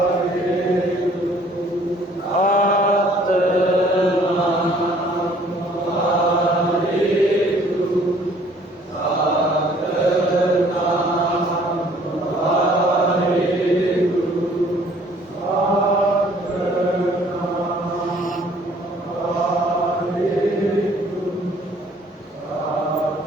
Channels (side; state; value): both; normal; correlation 0.58